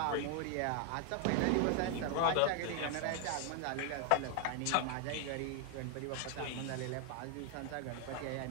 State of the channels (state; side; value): different; both; correlation 0.00